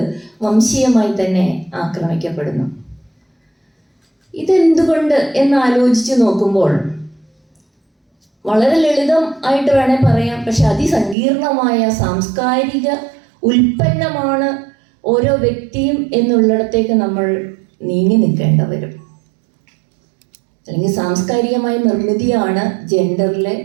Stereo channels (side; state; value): left; drops out; at 11.2 s